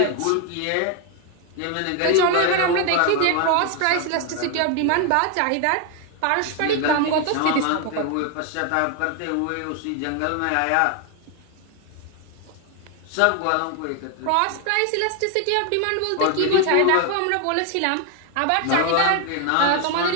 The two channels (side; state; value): both; different; correlation 0.01